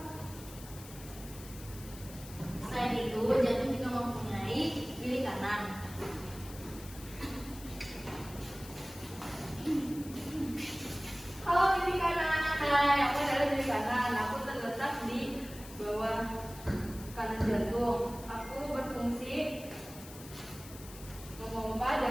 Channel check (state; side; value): noise; left; hiss, 16 dB below the sound